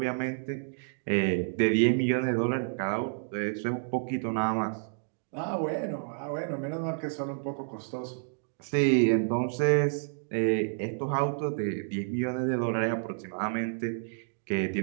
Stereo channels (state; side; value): silent; left; digital silence